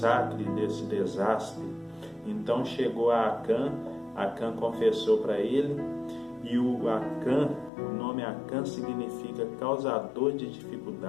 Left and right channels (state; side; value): drops out; right; at 7.7 s